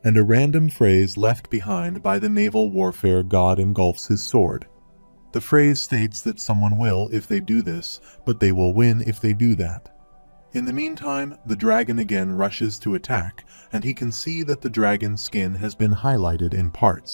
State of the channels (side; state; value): both; inverted; correlation -1.00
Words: and a random phrase left behind by the naval warfare god engulfs his sword. The phrase states that someone will if they do this, but they will win if they do that. In the meantime, the dragon again rushes to attack, and he can see that the dragon's skin has been highlighted in